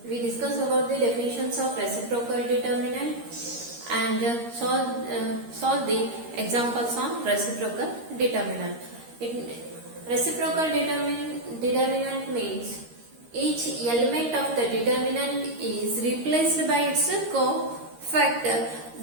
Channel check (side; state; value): left; late; 13 ms